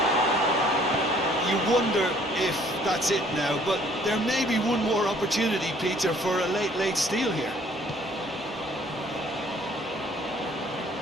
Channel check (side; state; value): both; normal; correlation 0.59